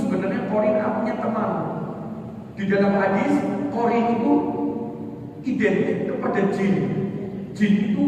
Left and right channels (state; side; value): identical; both; correlation 1.00